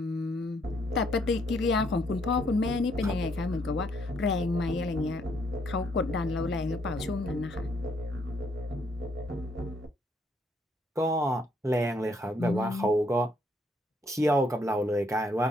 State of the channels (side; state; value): both; normal; correlation 0.70